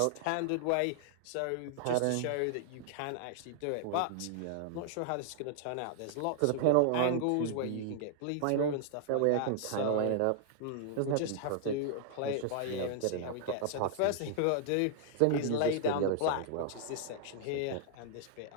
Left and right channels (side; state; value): both; different; correlation -0.01